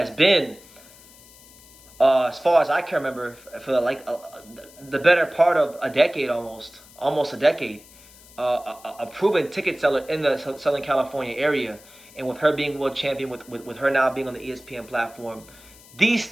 been, as far as I can remember, for the better part of a decade, almost a decade, a proven ticket seller in the Southern California area, and with her being world champion, with her now being on the ESPN platform, these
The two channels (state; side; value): noise; left; hiss, 23 dB below the sound